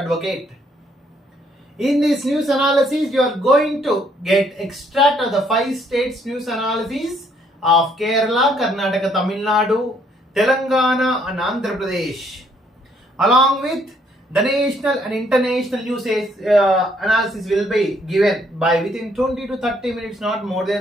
In this news analysis, you are going to get extract of the 5 states news analysis of Kerala, Karnataka, Tamil Nadu, Telangana and Andhra Pradesh, along with the national and international news analysis will be given by within 20 to 30 minutes, not more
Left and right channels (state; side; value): normal; both; correlation 0.68